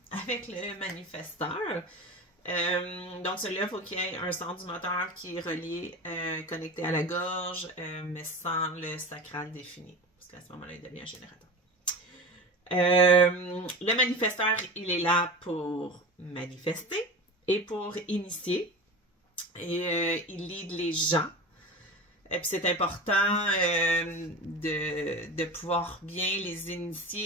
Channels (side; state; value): both; normal; correlation 0.31